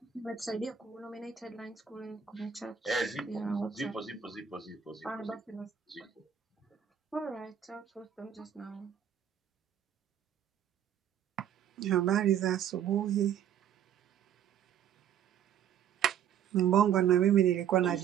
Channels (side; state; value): left; quieter; 9.0 dB